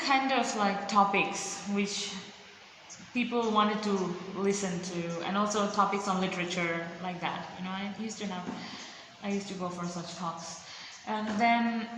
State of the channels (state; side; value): identical; both; correlation 1.00